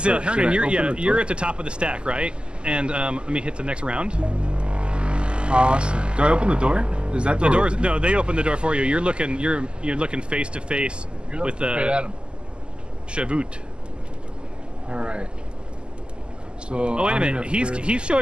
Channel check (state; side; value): late; left; 0.050 ms